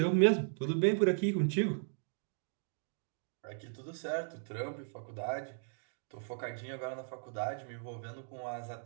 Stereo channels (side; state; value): left; silent; digital silence